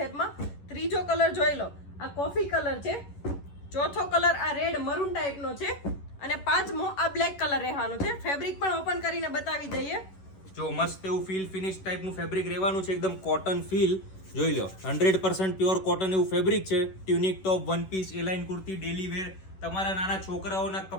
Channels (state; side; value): late; right; 11 ms